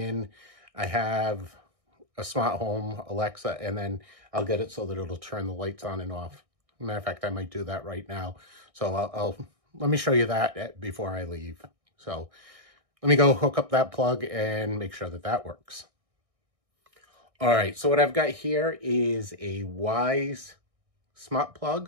I have a smart home Alexa, and then I'll get it so that it'll turn the lights on and off. Matter of fact, I might do that right now. So let me show you that before I leave. So let me go hook up that plug and make sure that that works. All right, so what I've got here is a Wise smart plug.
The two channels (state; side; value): late; left; 1.6 ms